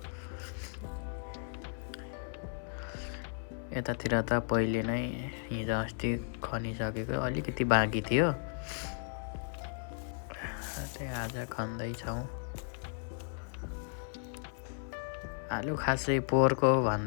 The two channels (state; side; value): silent; right; 55 dB below the other